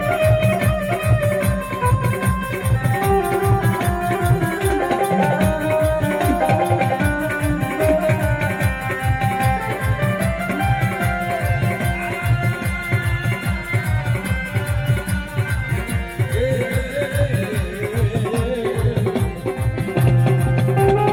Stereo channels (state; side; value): identical; both; correlation 1.00